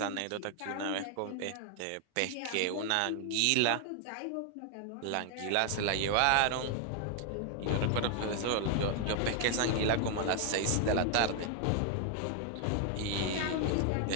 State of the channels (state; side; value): different; both; correlation 0.00